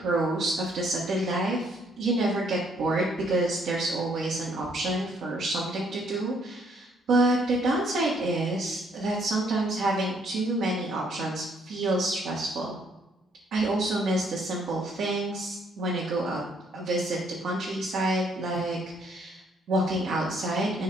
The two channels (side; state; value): both; normal; correlation 0.67